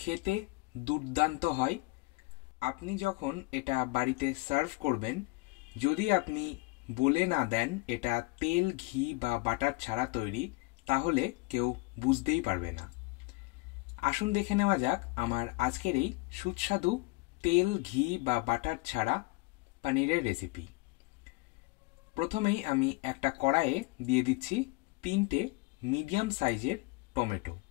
দুর্দান্ত হয়। আপনি যখন এটা বাড়িতে সার্ভ করবেন, যদি আপনি বলে না দেন এটা তেল, ঘি বা বাটার ছাড়া তৈরি, তাহলে কেউ বুঝতেই পারবে না। আসুন দেখে নেওয়া যাক আমার আজকের এই সুস্বাদু তেল, ঘি বা বাটার ছাড়া পনিরের রেসিপি। প্রথমেই আমি একটা কড়াইয়ে দিয়ে দিচ্ছি 3টে মিডিয়াম সাইজের টমেটো।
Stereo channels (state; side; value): quieter; right; 24.0 dB